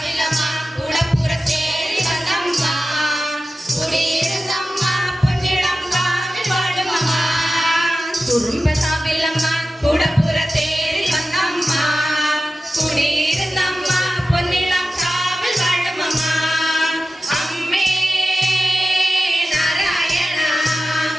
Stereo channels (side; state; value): both; normal; correlation 0.94